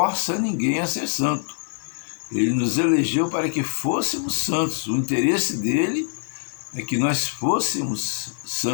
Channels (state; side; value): silent; right; digital silence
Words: ninguém a ser santo. Ele nos elegeu para que fôssemos santos. O interesse dele é que nós fôssemos